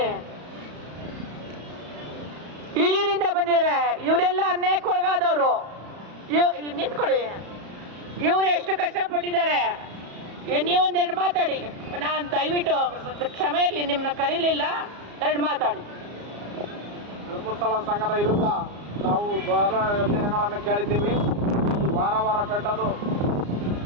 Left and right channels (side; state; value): left; late; 34 ms